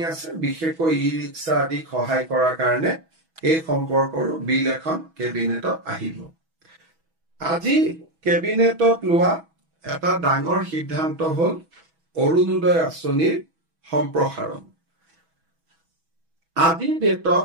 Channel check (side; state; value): left; late; 6.2 ms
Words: আছে, বিশেষকৈ ই ৰিক্সা আদি সহায় কৰাৰ কাৰণে এই সম্পৰ্কৰো বিল এখন কেবিনেটত আহিব। আজি কেবিনেটত লোৱা এটা ডাঙৰ সিদ্ধান্ত হ'ল অৰুণোদয় আঁচনিৰ সম্প্ৰসাৰণ। আজিৰ